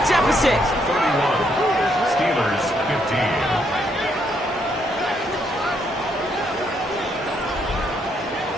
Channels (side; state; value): both; normal; correlation 0.73